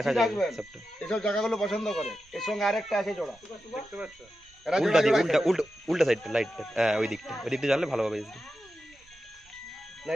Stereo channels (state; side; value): noise; right; rumble, 28 dB below the sound